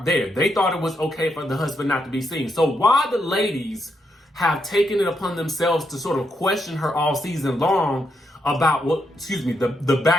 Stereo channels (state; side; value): normal; both; correlation 0.80